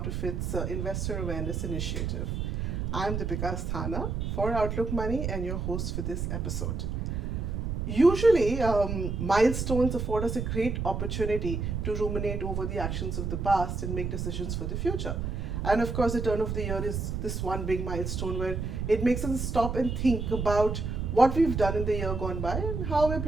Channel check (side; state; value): right; noise; rumble, 2 dB below the sound